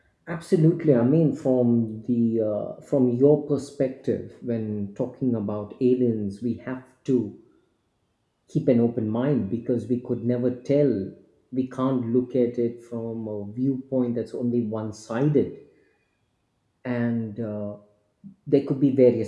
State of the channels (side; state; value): both; identical; correlation 1.00